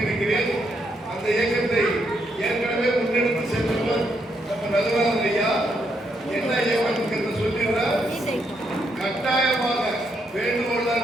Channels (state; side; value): normal; both; correlation 0.77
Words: அந்த இயக்கத்தை ஏற்கனவே முன்னெடுத்து சென்றவர் நம்ம நகராஜன் ஐயா என்ன இயக்கம் என்று சொல்லிடுறார். கட்டாயமாக வேண்டுகோள்